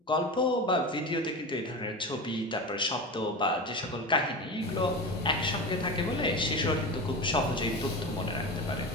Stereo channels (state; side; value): normal; both; correlation 0.26